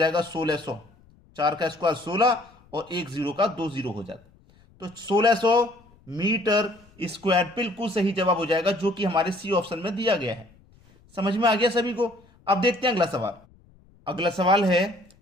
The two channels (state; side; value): noise; left; rumble, 29 dB below the sound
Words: 1600। 4 का स्क्वायर 16 और एक जीरो का 2 जीरो हो जाता, तो 1600 मीटर स्क्वायर बिल्कुल सही जवाब हो जाएगा, जो कि हमारे सी ऑप्शन में दिया गया है। समझ में आ गया सभी को। अब देखते हैं अगला सवाल। अगला सवाल है,